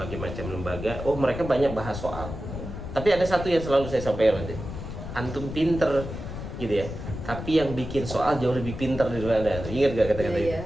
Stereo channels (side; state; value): left; noise; rumble, 8 dB below the sound